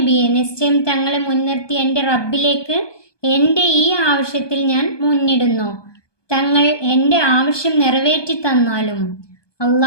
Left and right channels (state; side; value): late; right; 1.2 ms